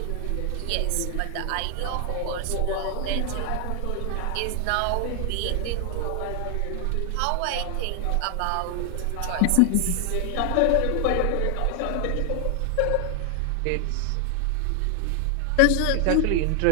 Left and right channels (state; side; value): different; both; correlation 0.00